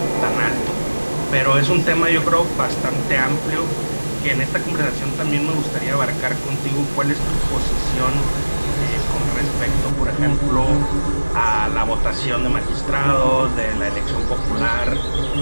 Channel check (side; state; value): both; inverted; correlation -1.00